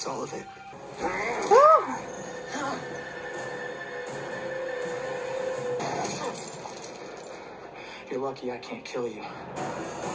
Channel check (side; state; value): both; identical; correlation 1.00